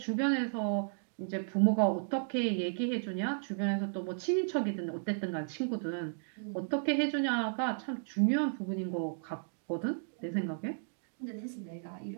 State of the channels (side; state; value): left; silent; digital silence